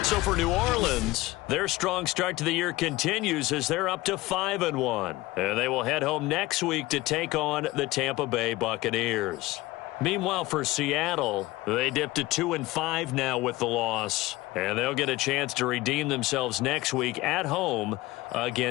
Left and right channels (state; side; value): quieter; right; 19.3 dB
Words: So for New Orleans, their strong start to the year continues as they're up to 5-1. And they will head home next week to take on the Tampa Bay Buccaneers. Meanwhile, for Seattle, they dipped to 2-5 now with the loss. And they'll get a chance to redeem themselves next week at home